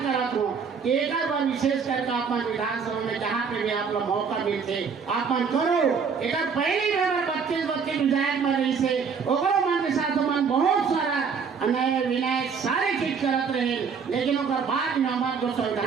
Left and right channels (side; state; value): left; quieter; 5.9 dB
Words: करत हूँ, एक बार विशेष करके आप विधानसभा में जहाँ पे भी आप लोग मौका मिलते आप करो। एक पहली बार 32 विधायक बन रही से ओकरो मन के साथ मन बहुत सारा अन्याय विनय सारे चीज करत रहे, लेकिन ओकर बाद में हमारे जो